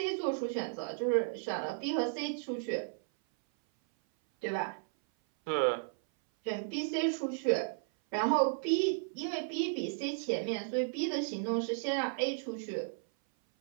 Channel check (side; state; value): left; silent; 55 dB below the other